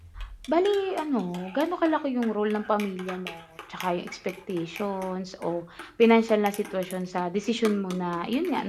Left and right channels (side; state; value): both; identical; correlation 1.00